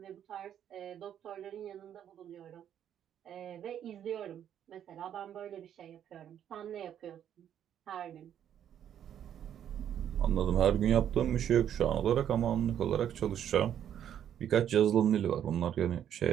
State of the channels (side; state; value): left; quieter; 9.8 dB